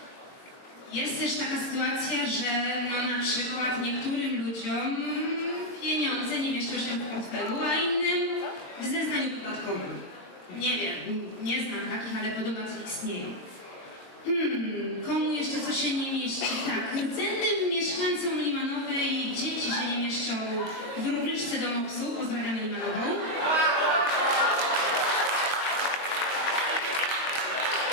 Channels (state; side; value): late; right; 22 ms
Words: Jest też taka sytuacja, że no, na przykład niektórym ludziom pieniądze nie mieszczą się w portfelu, a innym w zeznaniu podatkowym. Nie wiem, nie znam takich, ale podobno to istnieje. Komu jeszcze coś się nie mieści? Tak, rdzennym mieszkańcom Limanowej dzieci się nie mieszczą w rubryczce do MOPS-u. Pozdrawiamy Limanową.